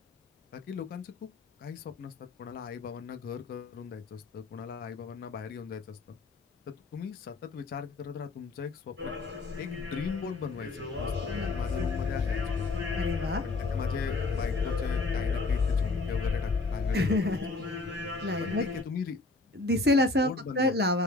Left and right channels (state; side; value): quieter; right; 3.3 dB